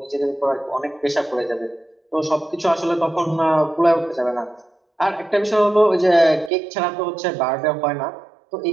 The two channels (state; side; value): drops out; left; at 6.5 s